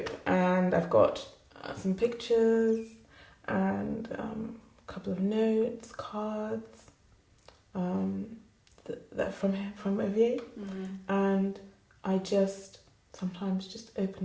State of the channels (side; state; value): both; identical; correlation 1.00